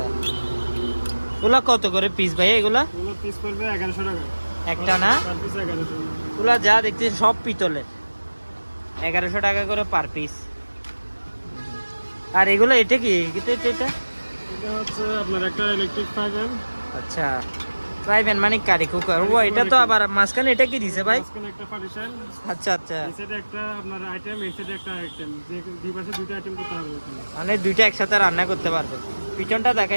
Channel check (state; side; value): inverted; both; correlation -1.00